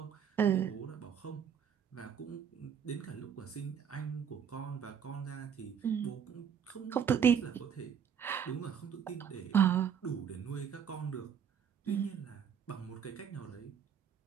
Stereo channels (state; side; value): quieter; left; 7.8 dB